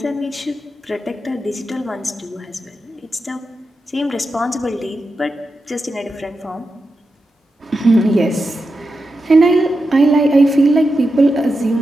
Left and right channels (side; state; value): both; normal; correlation 0.89